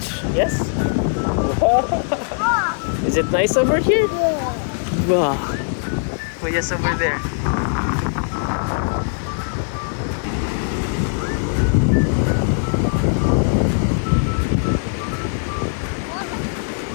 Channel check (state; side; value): silent; right; 65 dB below the other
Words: Yes? Is it nice over here? Yeah. Wow. Oh, yes, over there.